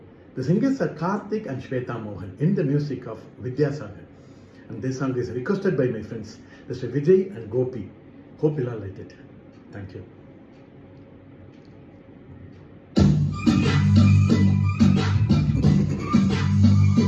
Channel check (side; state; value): both; identical; correlation 1.00